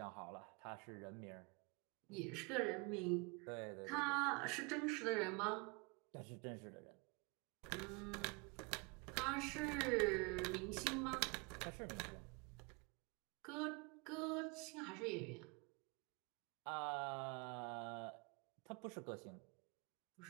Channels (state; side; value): quieter; left; 30.1 dB